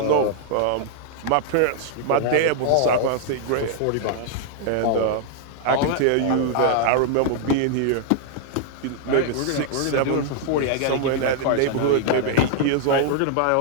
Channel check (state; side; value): different; both; correlation -0.01